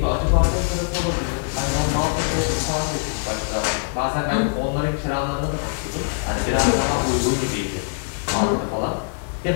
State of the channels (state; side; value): silent; right; digital silence